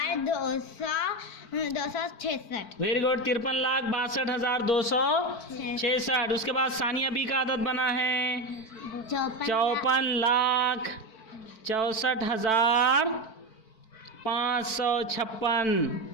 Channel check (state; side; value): late; right; 4.5 ms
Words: Very good. 53,62,266। उसके बाद सानिया बी का अदद बना है 54,64,556।